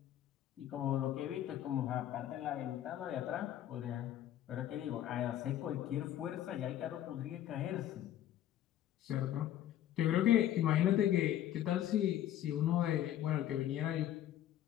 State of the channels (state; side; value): quieter; right; 11.9 dB